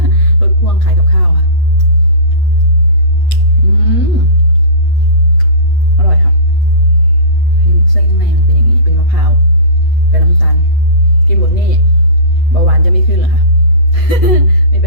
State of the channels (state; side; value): late; right; 8.2 ms